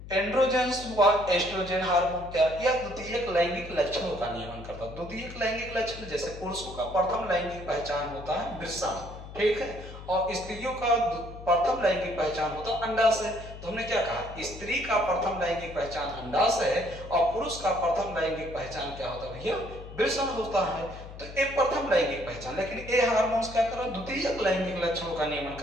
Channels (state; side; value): noise; left; hum, 13 dB below the sound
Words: एंड्रोजेंस व एस्ट्रोजन हार्मोन क्या? यह द्वितीयक लैंगिक लक्षणों का नियमन करता है। द्वितीयक लैंगिक लक्षण जैसे पुरुषों का प्रथम लैंगिक पहचान होता है वृषण, ठीक है, और स्त्रियों का प्रथम लैंगिक पहचान होता है अंडाशय। तो हमने क्या कहा? स्त्री का प्रथम लैंगिक पहचान अंडाशय है और पुरुष का प्रथम लैंगिक पहचान क्या होता है भैया? वृषण होता है। तो ये प्रथम लैंगिक पहचान, लेकिन ये हार्मोन्स क्या कर रहा है? द्वितीयक लैंगिक लक्षणों का नियमन